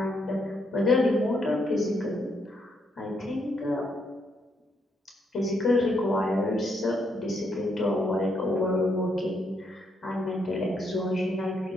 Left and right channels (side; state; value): both; normal; correlation 0.75